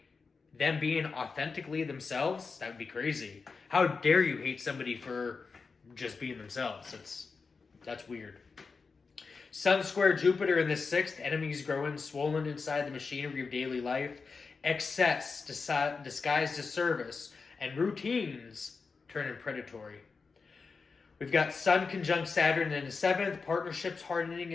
them being authentically themselves? That would be crazy. How dare you hate somebody for just being themselves? That's weird. Sun square Jupiter in the 6th, enemies growing, swollen inside the machinery of daily life, excess disguised as service, and routines turning predatory. We've got Sun conjunct Saturn in the 7th, partnerships hardening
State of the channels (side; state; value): right; quieter; 4.7 dB